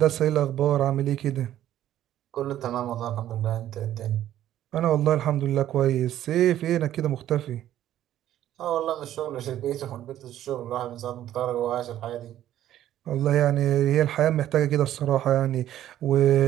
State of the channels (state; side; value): quieter; left; 12.3 dB